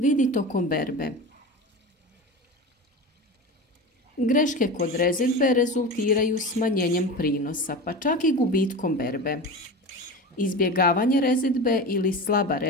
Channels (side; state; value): both; normal; correlation 0.28